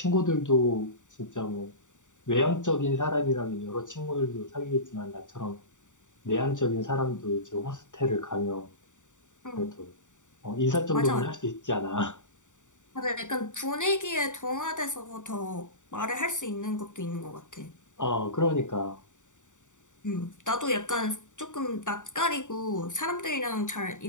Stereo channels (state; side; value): late; right; 0.86 ms